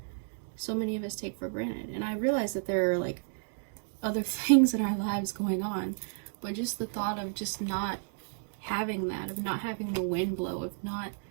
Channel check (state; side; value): silent; left; digital silence